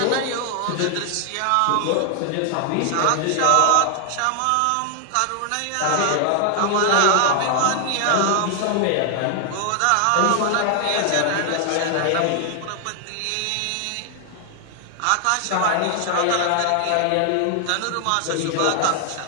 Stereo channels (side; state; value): both; different; correlation 0.00